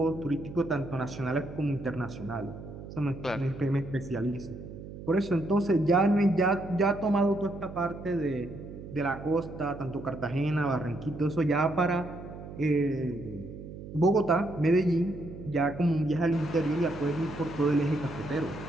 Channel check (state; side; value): noise; right; hum, 12 dB below the sound